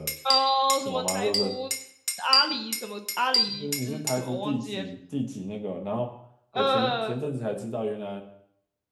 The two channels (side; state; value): both; identical; correlation 1.00